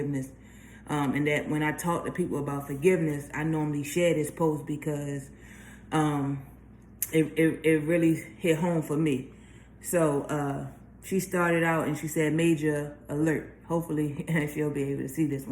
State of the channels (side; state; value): both; identical; correlation 1.00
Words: And that when I talk to people about forgiveness, I normally share this post because it really hit home for me. So she started out and she said, "Major alert." Hopefully she'll be able to see this